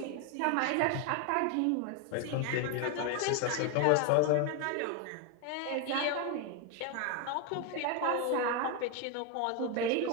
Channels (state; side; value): different; both; correlation 0.01